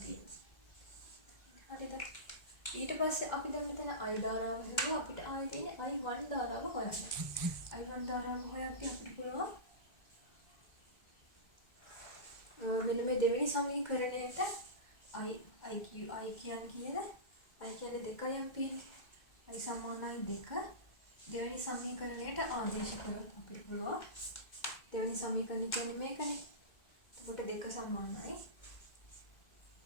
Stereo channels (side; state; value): right; late; 2.0 ms